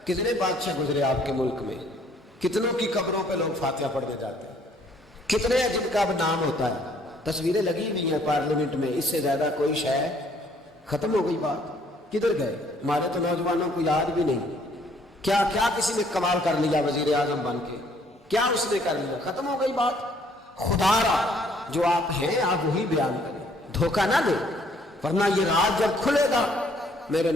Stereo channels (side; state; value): both; normal; correlation 0.63